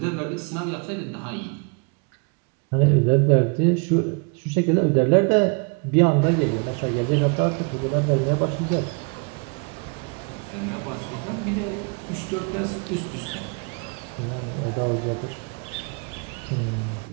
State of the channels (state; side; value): quieter; left; 34.4 dB